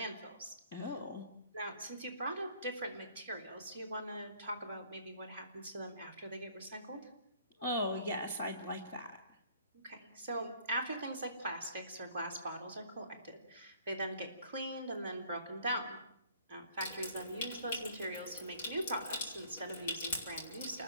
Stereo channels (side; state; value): both; inverted; correlation -0.57